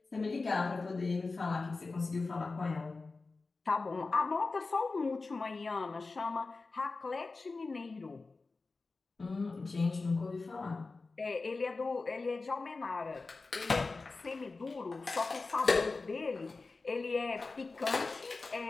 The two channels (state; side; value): quieter; right; 3.8 dB